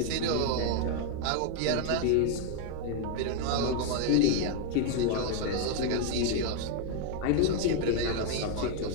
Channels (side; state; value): both; different; correlation 0.00